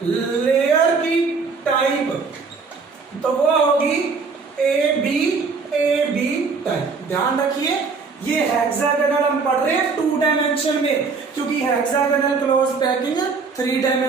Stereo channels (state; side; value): quieter; left; 4.7 dB